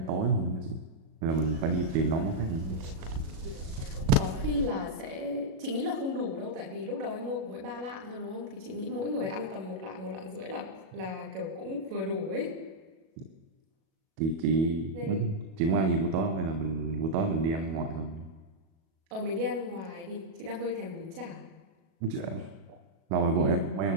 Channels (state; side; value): late; left; 37 ms